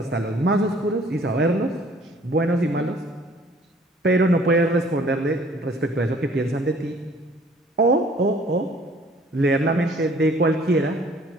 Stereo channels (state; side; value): normal; both; correlation 0.56